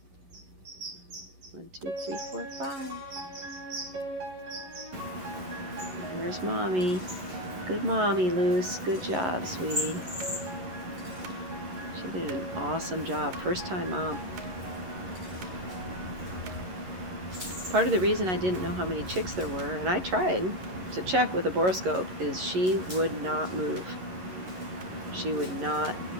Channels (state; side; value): late; left; 11 ms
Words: 1, 2, 3, 4, 5. There's Mommy. Good mommy, Luce. Good job, sweetie. She did an awesome job. First time mom. Part of the reason I didn't know how many chicks there were, and I tried to check with a borescope, is she would not move. She would not